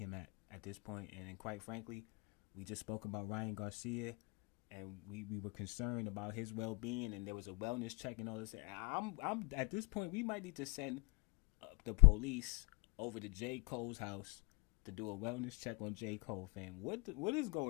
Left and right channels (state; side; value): quieter; right; 27.9 dB